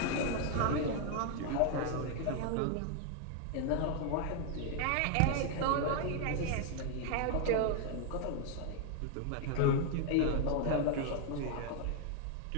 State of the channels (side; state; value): both; different; correlation 0.00